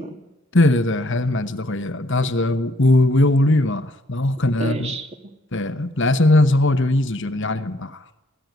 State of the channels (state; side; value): normal; both; correlation 0.68